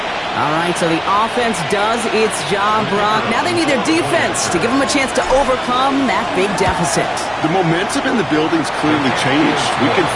All right, so the offense does its job, Brock. Now they need their defense to give them a chance to overcome that big deficit. The momentum in the building's clearly changed. We can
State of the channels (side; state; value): both; identical; correlation 1.00